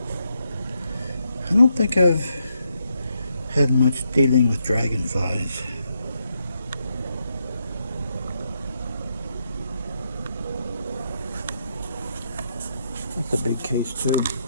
I don't think I've had much dealing with dragonflies. That's a big case too.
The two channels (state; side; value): inverted; both; correlation -0.80